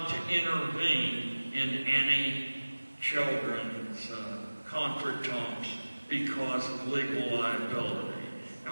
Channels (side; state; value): both; inverted; correlation -1.00